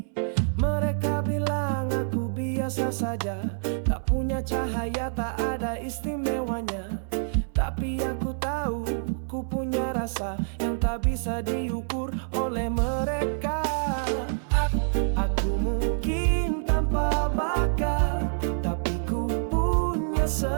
Mereka bilang aku biasa saja, tak punya cahaya, tak ada istimewanya. Tapi aku tahu, ku punya rasa yang tak bisa diukur oleh mereka. Aku mungkin tanpa bakat, tapi ku punya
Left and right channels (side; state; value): left; silent; 59 dB below the other